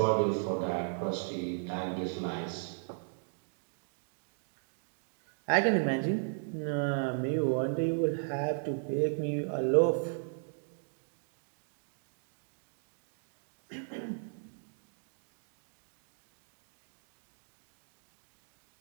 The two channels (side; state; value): left; silent; digital silence